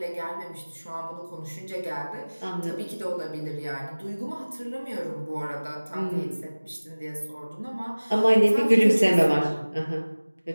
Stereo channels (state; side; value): inverted; both; correlation -1.00